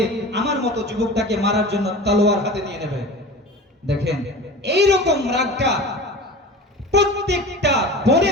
আমার মতো যুবকটাকে মারার জন্য তলোয়ার হাতে নিয়ে নেবে। দেখেন, এইরকম রাগটা প্রত্যেকটা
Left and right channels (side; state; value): both; normal; correlation 0.35